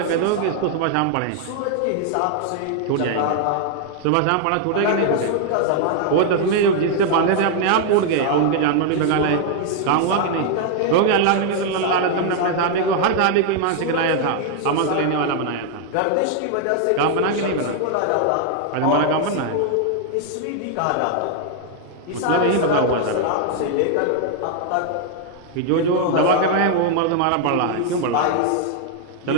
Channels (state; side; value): different; both; correlation 0.00